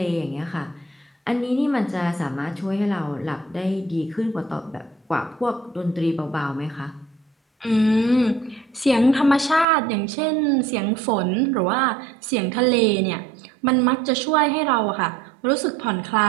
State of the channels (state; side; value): drops out; left; at 9.7 s